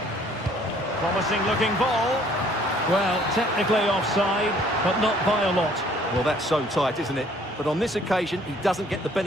Promising looking ball. Well, technically offside, but not by a lot. Well, that's so tight, isn't it? But on this occasion, he doesn't get the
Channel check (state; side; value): normal; both; correlation 0.59